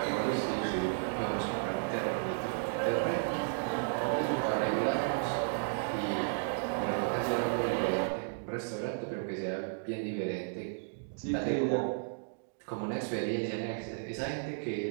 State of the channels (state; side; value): silent; left; digital silence